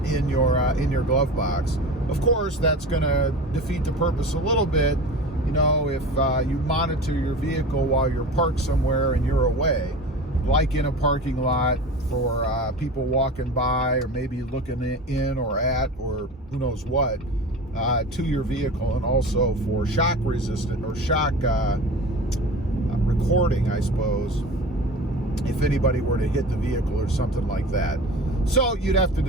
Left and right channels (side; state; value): both; normal; correlation 0.35